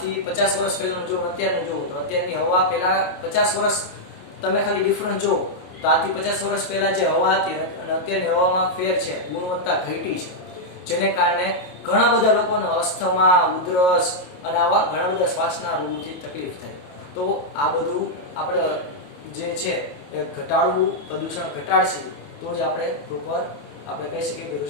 50 વર્ષ પહેલાનું જો અત્યારનું જુઓ તો અત્યારની હવા પહેલા 50 વર્ષ તમે ખાલી ડિફરન્સ જુઓ તો આજથી 50 વર્ષ પહેલા જે હવા હતી અને અત્યારની હવામાં ફેર છે, ગુણવત્તા ઘટી છે. જેને કારણે ઘણા બધા લોકોને અસ્થમા, ઉધરસ અને આવા ઘણા બધા શ્વાસના રોગોથી તકલીફ થાય. તો આ બધું આપણે જે છે એ ઘટાડવું, પ્રદૂષણ ઘટાડશે તો જ આપણે પ્રોપર આપણે કહી શકીએ કે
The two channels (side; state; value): right; late; 28 ms